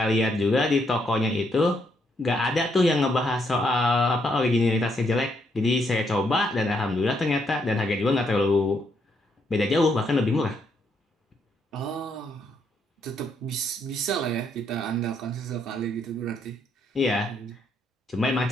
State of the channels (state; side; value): normal; both; correlation 0.75